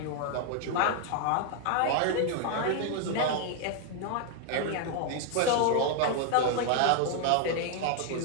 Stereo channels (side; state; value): both; different; correlation 0.00